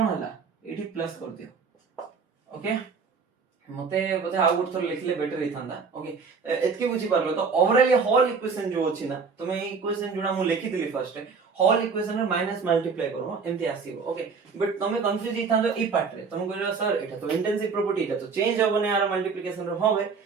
होला एठी प्लस कर दियो ओके मते बोधे आउ गुड थोर लिखले बेटर हिथांदा ओके एतके बुझी पारलो तो ओवरऑल ये होल इक्वेशन जो अछि ना तुमे ई इक्वेशन जोडा मु लिखि दिली फर्स्ट होल इक्वेशन रे माइनस मल्टीप्लाई करो एमती आसीबो ओके बट तुमे कंफ्यूज हिथांदो ई पार्ट रे तुम कहलो सर एटा तो इंटेंसिव प्रॉपर्टी एटा तो चेंज होबने आर मल्टीप्लिकेशन रे होबे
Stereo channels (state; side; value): quieter; left; 5.2 dB